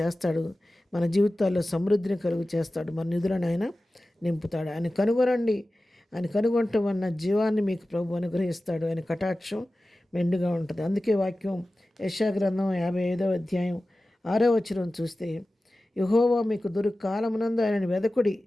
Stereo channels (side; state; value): both; normal; correlation 0.96